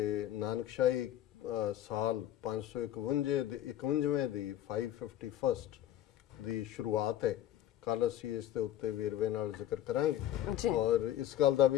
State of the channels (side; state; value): right; quieter; 12.2 dB